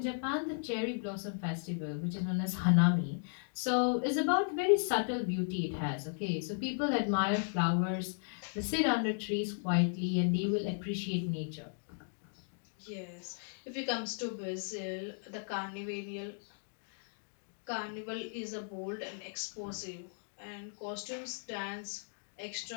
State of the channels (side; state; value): right; silent; digital silence